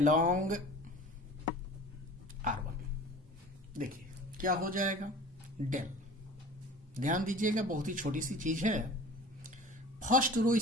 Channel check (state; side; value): normal; both; correlation 0.42